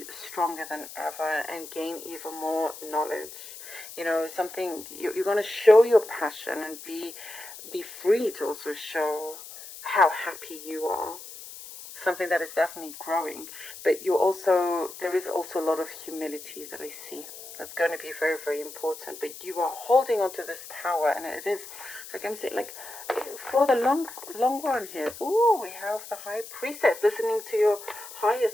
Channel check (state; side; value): noise; left; hiss, 14 dB below the sound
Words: stronger than ever and gain even more knowledge. You know, something you're going to show your passion and be free to also show how happy you are. Something that is definitely growing, but there is also a lot of humility that I see. That's going to be very, very important. But you are holding on to this power, and it is, like I'm saying, like for the long run here. Ooh, we have the High Priestess, listening to your higher